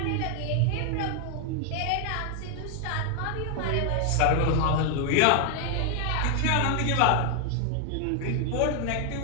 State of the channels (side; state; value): both; different; correlation 0.00